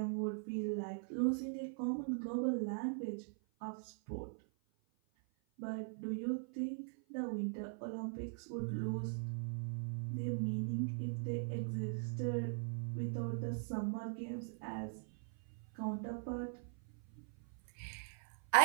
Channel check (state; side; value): silent; left; 50 dB below the other